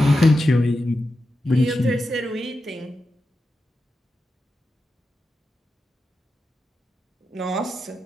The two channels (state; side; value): normal; both; correlation 0.90